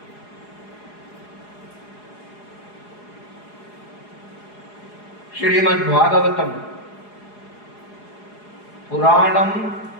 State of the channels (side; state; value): right; late; 4.8 ms